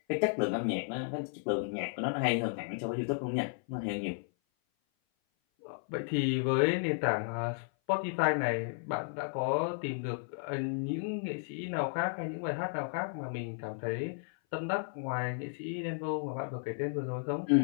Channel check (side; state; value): right; silent; 55 dB below the other